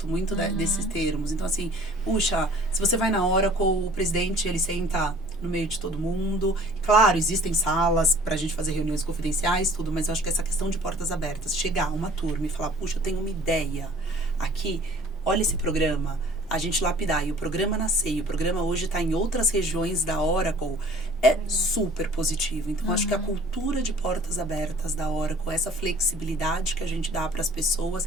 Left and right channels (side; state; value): both; normal; correlation 0.50